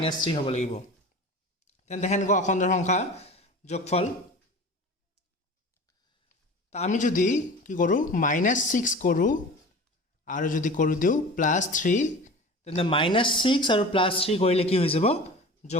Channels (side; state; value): both; normal; correlation 0.37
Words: হ'ব লাগিব তেন্তে হেনকৈ অখণ্ড সংখ্যা যোগফল তা আমি যদি কি কৰো -6 কৰো আৰু যদি কৰি দিও +3 তেন্তে -6 আৰু +3 কৰিলে কি হৈ যাব